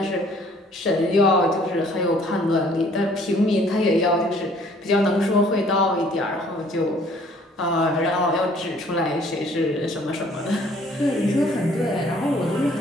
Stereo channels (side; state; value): both; normal; correlation 0.58